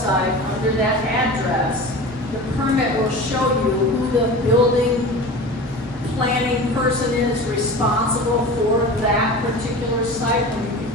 under that address, the permit will show you who the building planning person is responsible for that particular site, and you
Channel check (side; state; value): both; normal; correlation 0.34